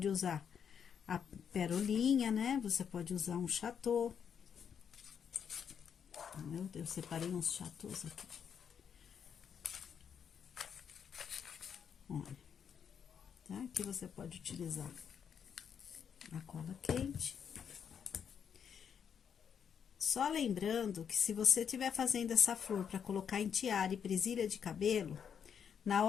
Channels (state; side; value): quieter; right; 7.6 dB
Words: usar a perolinha, né? Você pode usar um chatô. Meu Deus, separei uns chatôs aqui. Olha, tá? Aqui você pode utilizar a cola quente. Só lembrando que se você estiver fazendo essa flor para colocar em tiara e presilha de cabelo, na